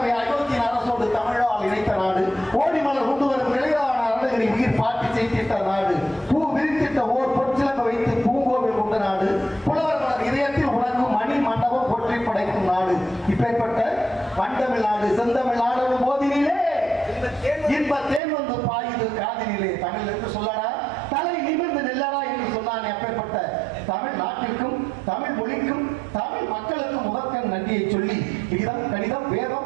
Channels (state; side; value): drops out; left; at 18.2 s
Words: அயோத்தியின் அரசோடு தமிழால் இணைத்த நாடு ஓடிமலர் கொண்டு வரும் நிலையான அருணகிரி உயிர் பாட்டி செய்திட்ட நாடு பூ விரித்திட்ட ஓர் பொற்சிலங்க வைத்து பூங்கோவில் கொண்ட நாடு இப்பேற்பட்ட பண்டமிழ்நாடு செந்தமிழ்நாடு போதினிலே இன்ப தேன் வந்து பாயுது காதினிலே. தமிழ் என்று சொல்லடா, தலை நிமிர்ந்து நெல்லடா என்று சொன்னானே. அப்பேற்பட்ட தமிழ் நாட்டிற்கும் தமிழ் மொழிக்கும் தமிழ் மக்களுக்கும் முதற்கண் நன்றியை சொல்லி கீதம் கணிதம்